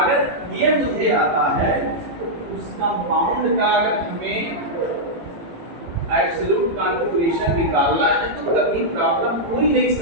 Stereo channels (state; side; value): late; left; 18 ms